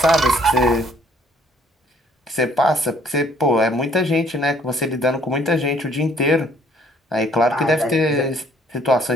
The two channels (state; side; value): normal; both; correlation 0.61